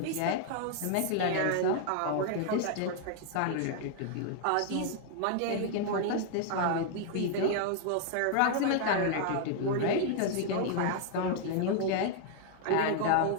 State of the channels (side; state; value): both; different; correlation 0.00